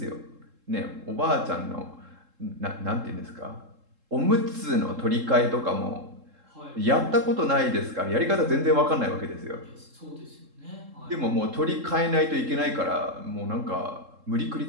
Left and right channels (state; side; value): late; left; 3.7 ms